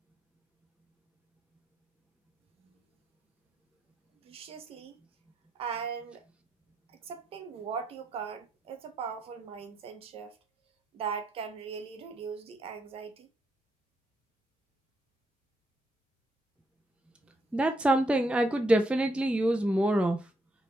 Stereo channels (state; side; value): normal; both; correlation 0.79